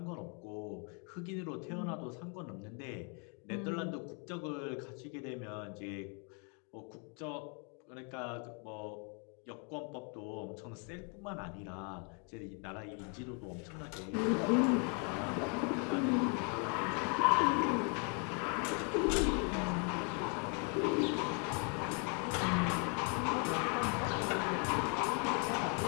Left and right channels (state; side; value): quieter; right; 37.8 dB